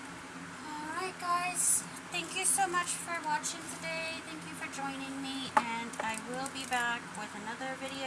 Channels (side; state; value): both; identical; correlation 1.00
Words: alright guys, thank you so much for watching today. Thank you for joining me, and I will be back with another